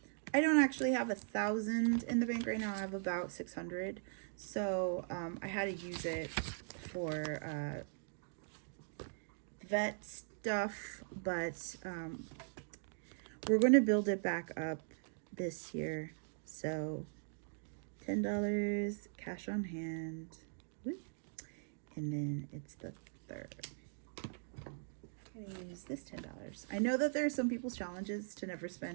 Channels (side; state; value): left; silent; digital silence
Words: I don't actually have 1,000 in the bank right now. I have about 600. So I had to use it for vet stuff, but we're going to build it back up this year. So $10 cash on hand. Woo. And then it's the third. I'm gonna use this $10. I know that there are some people's challenges to never